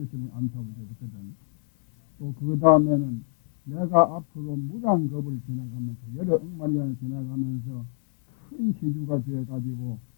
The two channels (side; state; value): right; silent; 60 dB below the other